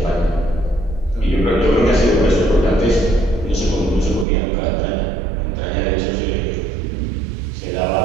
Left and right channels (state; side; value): drops out; left; at 4.2 s